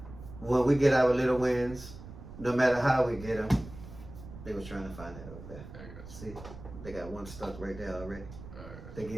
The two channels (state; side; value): noise; right; rumble, 14 dB below the sound